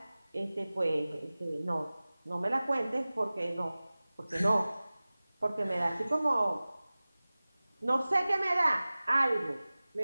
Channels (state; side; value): inverted; both; correlation -0.98